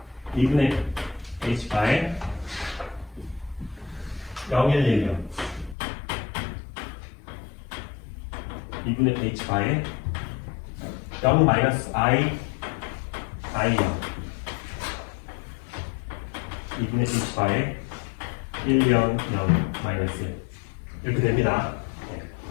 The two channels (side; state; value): right; drops out; at 5.8 s